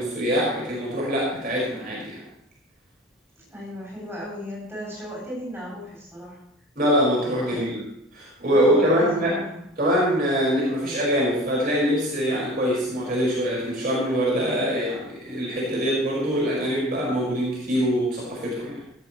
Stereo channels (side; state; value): both; normal; correlation 0.41